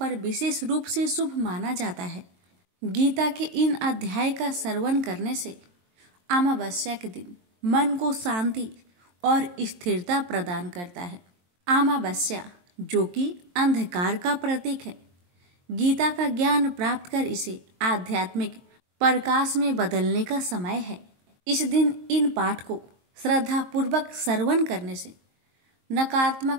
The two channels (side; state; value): left; late; 23 ms